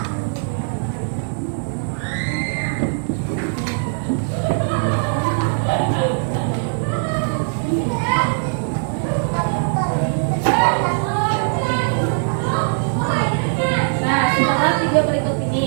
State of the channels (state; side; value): silent; left; 65 dB below the other